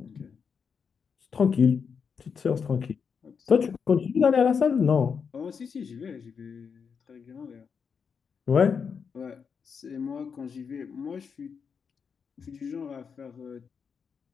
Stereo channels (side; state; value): right; quieter; 6.2 dB